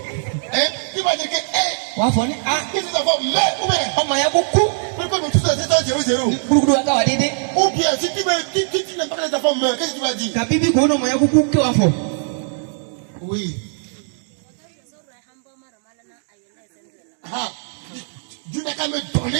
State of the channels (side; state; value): left; silent; digital silence